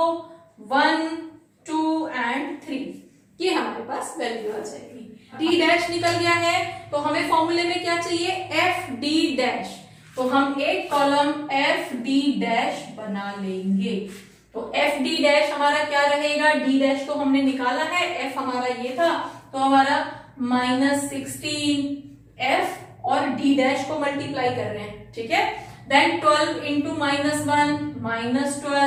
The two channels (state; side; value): identical; both; correlation 1.00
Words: 1 2 एंड 3, ये हमारे पास वैल्यू आ जाएगी। D' निकल गया है, तो हमें फॉर्मूले में क्या चाहिए? FD', तो हम एक कॉलम FD' बना लेंगे। तो FD' हमारा क्या रहेगा? D' तो हमने निकाला है, F हमारा ये था, तो हमारा -16 F और D' को मल्टीप्लाई कर रहे हैं। ठीक है, then 12 into -1